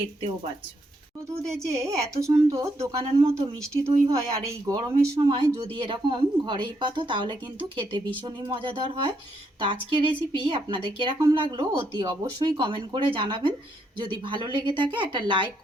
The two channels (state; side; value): normal; both; correlation 0.76